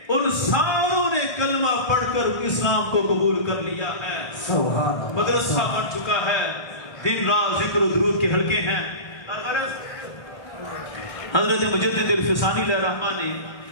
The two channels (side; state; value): right; late; 1.3 ms